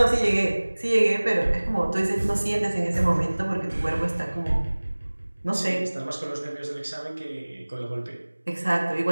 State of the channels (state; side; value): inverted; both; correlation -1.00